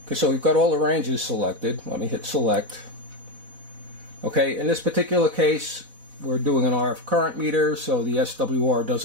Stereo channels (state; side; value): late; left; 4.1 ms